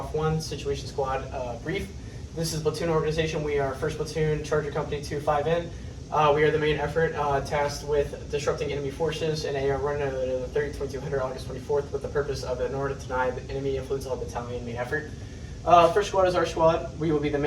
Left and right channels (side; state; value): both; identical; correlation 1.00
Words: 1, Situation Squad Brief. This is platoon organization. We are 1st Platoon, Charger Company 2-5N. We are the main effort tasked with disrupting enemy forces in a run of the 30-2200 August 24th with the purpose of, in order to deny the enemy influence on the battalion main effort. First squad is our squad. We will be the